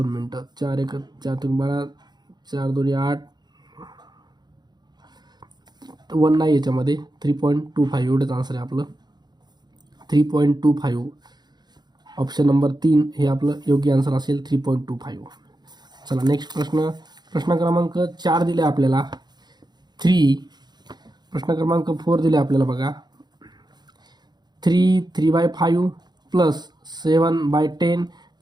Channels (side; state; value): left; late; 0.20 ms